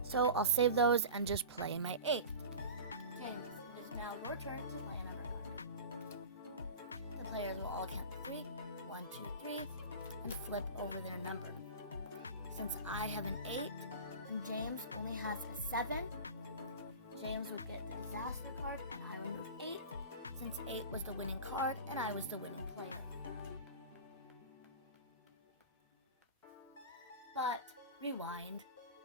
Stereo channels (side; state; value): both; inverted; correlation -0.33